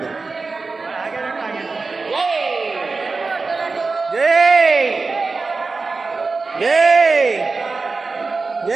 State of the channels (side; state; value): left; quieter; 4.0 dB